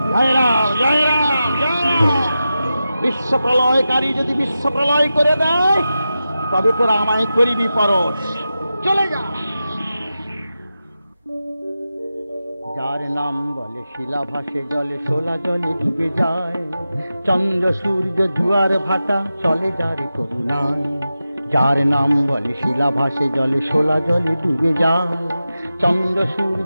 জয় রাম, জয় রাম, জয় রাম। বিশ্ব প্রলয়কারী যদি বিশ্ব প্রলয় করে দেয়, তবে তোরা আমায় করিবি পরশ। চলে যা। যার নাম বলে শিলা ভাসে জলে, শোলা জলে ডুবে যায়। চন্দ্র সূর্য জুয়ার ভাটা চলে যার করুণায়। যার নাম বলে শিলা ভাসে জলে, শোলা জলে ডুবে যায়। চন্দ্র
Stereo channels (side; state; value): both; inverted; correlation -0.92